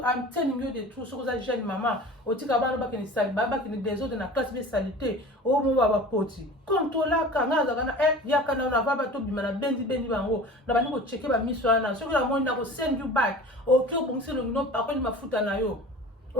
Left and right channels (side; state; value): both; normal; correlation 0.39